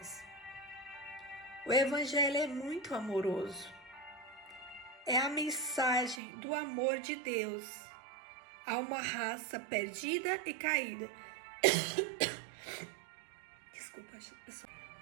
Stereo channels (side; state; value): left; drops out; at 6.2 s